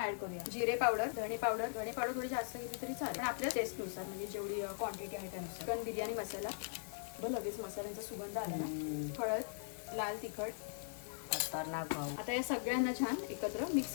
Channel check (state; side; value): silent; right; 51 dB below the other